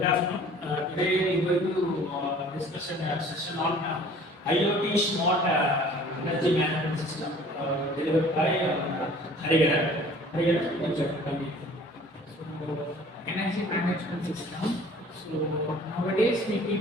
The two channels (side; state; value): both; normal; correlation 0.50